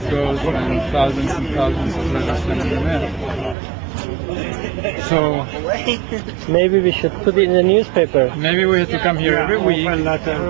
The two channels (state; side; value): drops out; left; at 3.6 s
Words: goes when thousands and thousands of letters sent in the mail. So Maybe we should put it in the newspaper. maybe we have to come here every